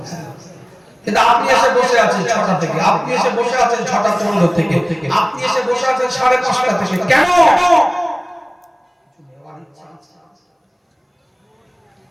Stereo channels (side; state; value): both; identical; correlation 1.00